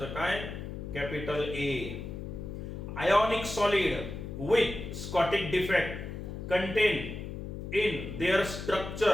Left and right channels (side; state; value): left; noise; hum, 7 dB below the sound